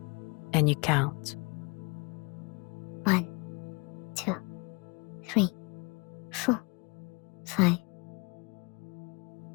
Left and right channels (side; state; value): right; quieter; 29.6 dB